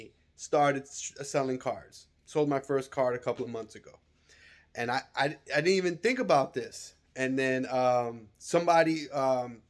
started selling cards. Sold my first card a couple of months ago. And I didn't even think about this. And then somebody,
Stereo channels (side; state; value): both; identical; correlation 1.00